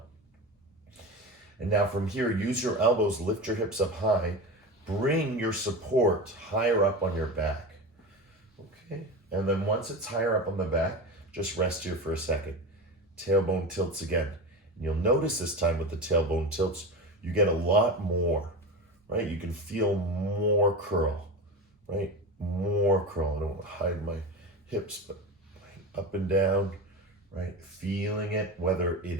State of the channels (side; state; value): both; normal; correlation 0.25